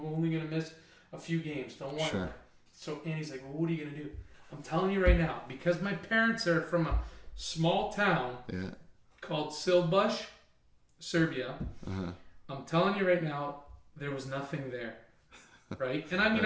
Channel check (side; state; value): both; identical; correlation 1.00